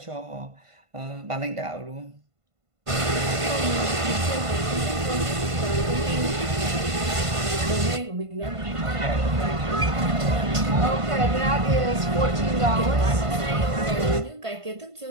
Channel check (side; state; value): left; late; 1.5 ms